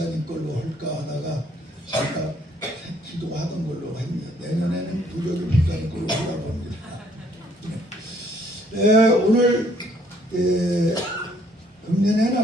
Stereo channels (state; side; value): normal; both; correlation 0.65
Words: 걸로 할까 하다가 제가 기도하던 걸로 합니다. 내년에는 부적이 목사님 걸로 하려고 합니다. 오늘